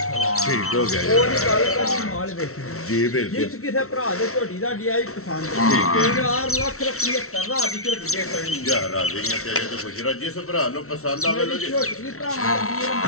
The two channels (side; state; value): right; late; 0.63 ms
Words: ਠੀਕ ਹੋ ਗਿਆ ਉਹ ਨਹੀਂ ਗੱਲ ਕਰਨੀ ਮਾਲ ਵੇਖੀ ਜੀ ਬਿਲਕੁਲ ਜਿਸ ਕਿਸੇ ਭਰਾ ਦੇ ਝੋਟੀ ਦਾ ਡਿਆਈ ਪਸੰਦ ਠੀਕ ਹੈ। 4 ਲੱਖ ਰੁਪਏ ਕਰਦਾ ਦੀ ਝੋਟੀ ਦੇ ਕਰਨੀ ਜਾ ਰਾਜ਼ੀਆਂ ਤੇਰੇ ਤੋਂ ਗੁਜਰਾ ਜਿਸ ਭਰਾ ਨੂੰ ਪਸੰਦ ਆਵੇ ਲੋ ਜੀ ਝੋਟੀ ਵੀ ਭਰਾ ਦੀ